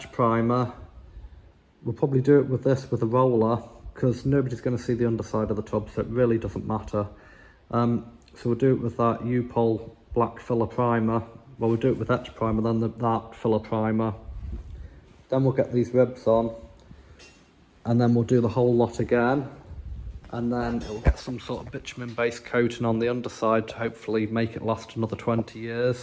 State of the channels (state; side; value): identical; both; correlation 1.00